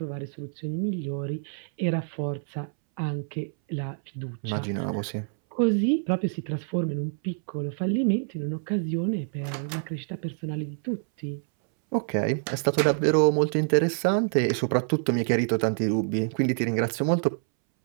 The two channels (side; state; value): left; silent; 60 dB below the other